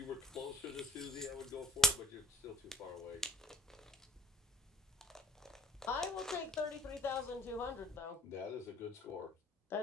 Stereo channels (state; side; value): normal; both; correlation 0.46